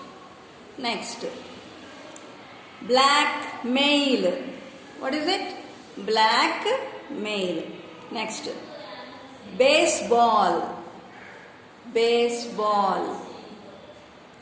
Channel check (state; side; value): identical; both; correlation 1.00